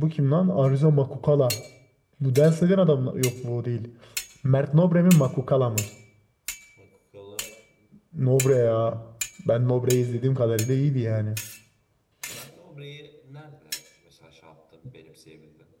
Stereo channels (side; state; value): both; identical; correlation 1.00